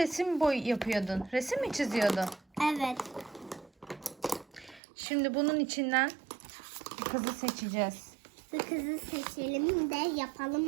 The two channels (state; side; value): drops out; left; at 4.8 s